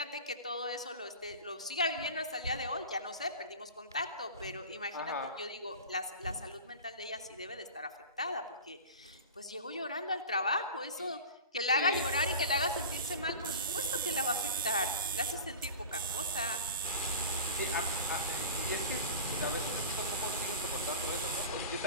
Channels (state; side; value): inverted; both; correlation -0.34